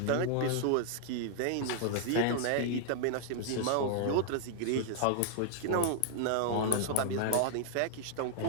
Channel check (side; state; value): both; different; correlation 0.00